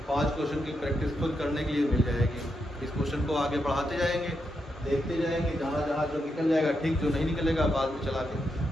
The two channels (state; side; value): normal; both; correlation 0.83